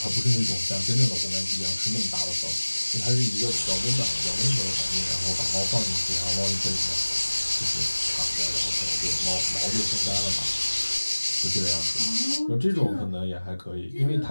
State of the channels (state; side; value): inverted; both; correlation -1.00